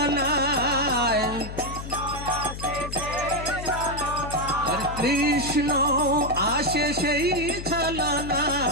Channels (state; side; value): noise; left; hum, 9 dB below the sound